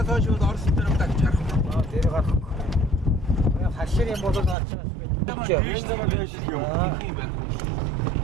хойш бол Орос дээр удаа чарах. Тэр гарах. Хашир юм бол гарч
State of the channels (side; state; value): left; drops out; at 4.5 s